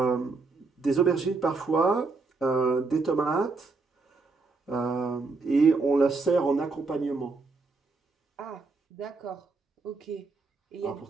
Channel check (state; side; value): quieter; left; 4.0 dB